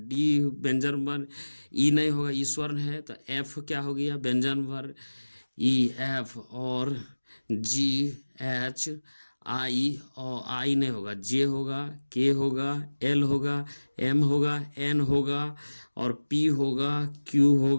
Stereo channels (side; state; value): both; inverted; correlation -1.00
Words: डी व्यंजन वर्ण, ई नहीं होगा, ई स्वर्ण है, तो एफ क्या हो गया, व्यंजन वर्ण, ई एफ और GH आई, और आई नहीं होगा, जे होगा, के होगा, एल होगा, एम होगा, एन होगा और पी होगा, क्यू